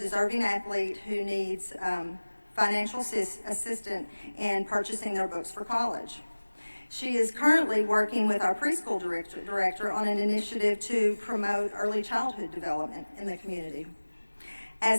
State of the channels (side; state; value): both; inverted; correlation -1.00